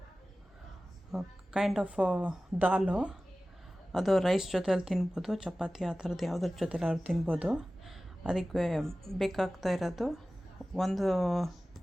ಕೈಂಡ್ ಆಫ್ ದಾಲು. ಅದು ರೈಸ್ ಜೊತೆಯಲ್ಲಿ ತಿನ್ಬೋದು, ಚಪಾತಿ ಆ ಥರದ್ದು ಯಾವುದ್ರ ಜೊತೆಲಿ ಅವ್ರು ತಿನ್ಬೋದು. ಅದಕ್ಕೆ ಬೇಕಾಗ್ತಾ ಇರೋದು ಒಂದು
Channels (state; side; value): normal; both; correlation 0.97